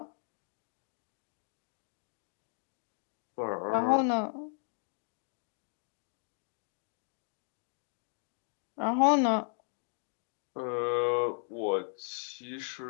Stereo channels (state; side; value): silent; right; 54 dB below the other